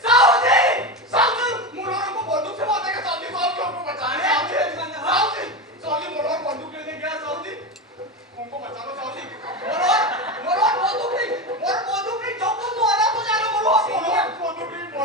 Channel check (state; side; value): normal; both; correlation 0.19